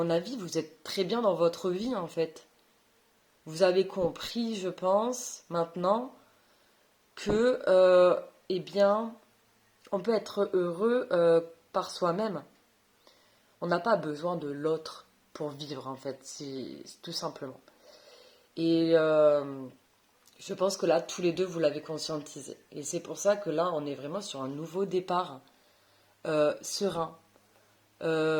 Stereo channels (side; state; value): both; identical; correlation 1.00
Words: avis, vous êtes très bien dans votre vie en fait. Vous avez compris, je pense, maintenant, que, eh bien, on peut être heureux par soi-même. On n'a pas besoin de l'autre pour vivre, en fait, c'est tout simplement. Et je pense que là, tous les deux, vous l'avez conscientisé. Et c'est pour ça que là, on est vraiment sur un nouveau départ, serein,